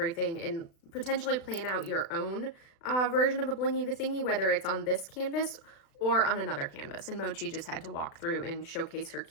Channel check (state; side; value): late; right; 36 ms